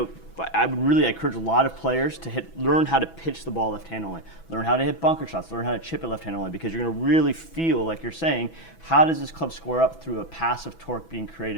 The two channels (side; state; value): right; late; 6.1 ms